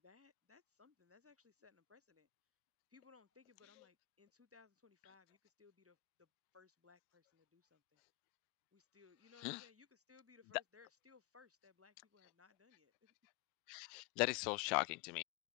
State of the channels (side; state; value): right; quieter; 24.9 dB